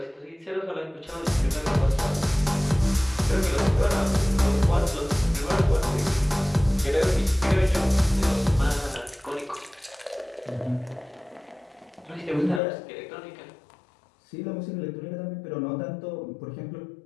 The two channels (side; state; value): right; drops out; at 12.6 s